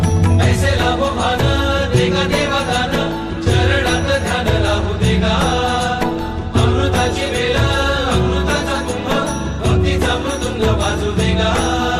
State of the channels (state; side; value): identical; both; correlation 1.00